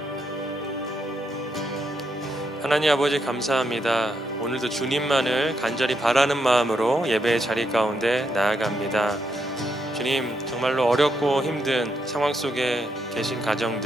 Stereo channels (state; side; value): normal; both; correlation 0.79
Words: 하나님 아버지 감사합니다. 오늘도 주님만을 간절히 바라는 마음으로 예배의 자리 가운데 나아갑니다. 주님, 정말로 어렵고 힘든 상황 속에 계신